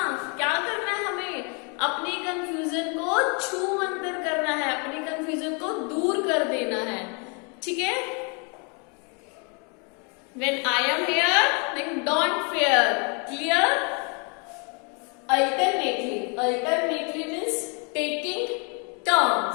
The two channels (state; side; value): quieter; right; 35.4 dB